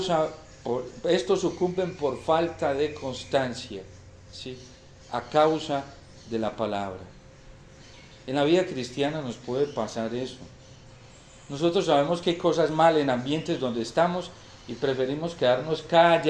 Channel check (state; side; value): identical; both; correlation 1.00